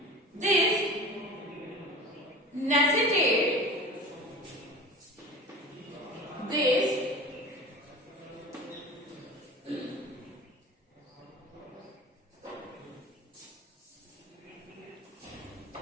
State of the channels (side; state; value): both; normal; correlation 0.36